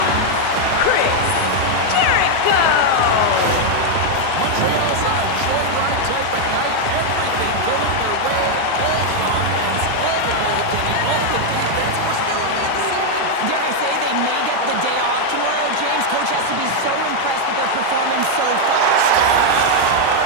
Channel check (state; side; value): different; both; correlation 0.00